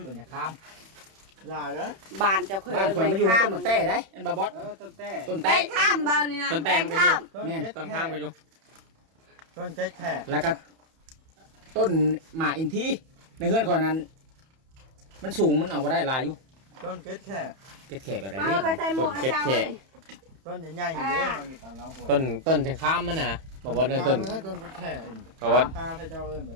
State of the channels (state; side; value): late; left; 31 ms